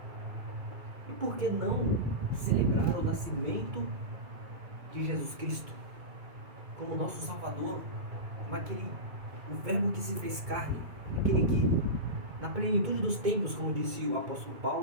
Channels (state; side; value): late; left; 2.3 ms